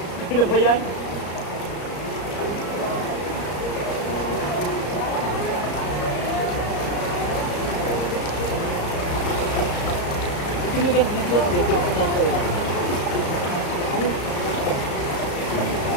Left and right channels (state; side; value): late; right; 34 ms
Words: Ano ba yan? Tinigan dito ko dito sa kanto.